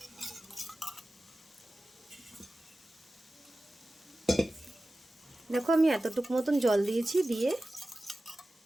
দেখো আমি এতটুকু মতন জল দিয়েছি, দিয়ে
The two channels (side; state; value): both; normal; correlation 0.95